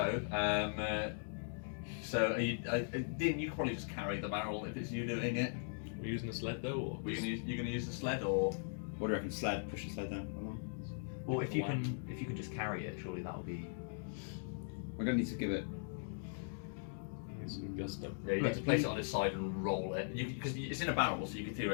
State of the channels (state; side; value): silent; right; digital silence